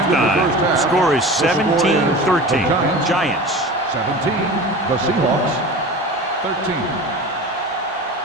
the score is 17-13. Giants. 17. The Seahawks. 13.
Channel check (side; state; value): both; normal; correlation 0.34